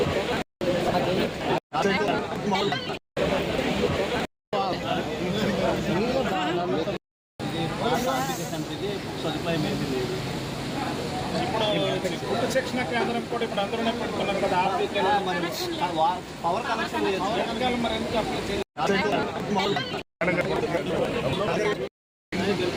ఇప్పుడు శిక్షణ కేంద్రం కూడా ఇప్పుడు అందరూనే పెట్టుకున్నారు కదా, పవర్ కనెక్షన్ మరి ఎందుకు అప్లై చేయాలి?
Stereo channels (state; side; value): identical; both; correlation 1.00